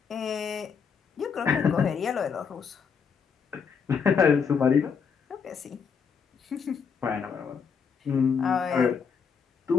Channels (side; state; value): right; quieter; 6.2 dB